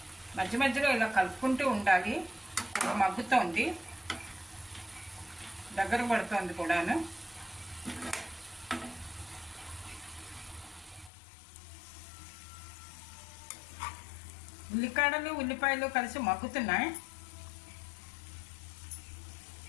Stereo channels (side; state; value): right; drops out; at 11.1 s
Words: మధ్య మధ్యలో ఇలా కలుపుకుంటూ ఉండాలి. మగ్గుతోంది, దగ్గర పడుతోంది కూడాను. ఉల్లికాడలు ఉల్లిపాయలు కలిసి మగ్గుతున్నాయి.